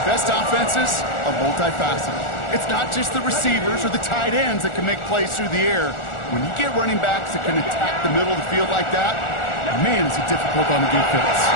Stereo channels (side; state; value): right; late; 1.4 ms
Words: best offenses are multifaceted. It's not just the receivers or the tight ends that can make plays through the air. When you get running backs that can attack the middle of the field like that, man, is it difficult on the defense.